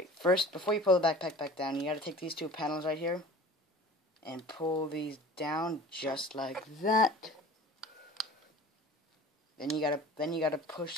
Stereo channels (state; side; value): normal; both; correlation 0.42